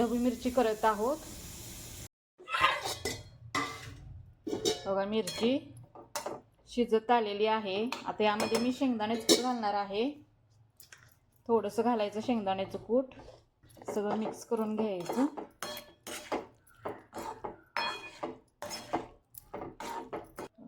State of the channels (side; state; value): both; identical; correlation 1.00